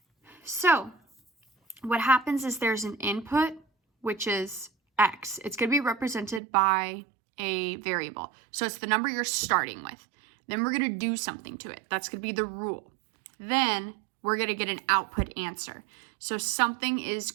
So what happens is there's an input, which is x. It's going to be represented by a variable. So it's the number you're starting with. Then we're going to do something to it. That's going to be the rule. Then we're going to get an output answer. So something is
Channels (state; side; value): drops out; left; at 6.4 s